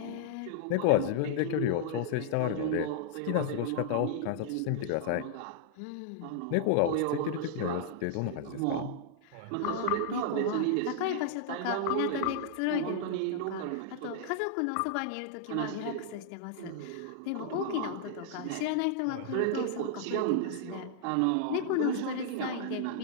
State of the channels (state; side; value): different; both; correlation -0.01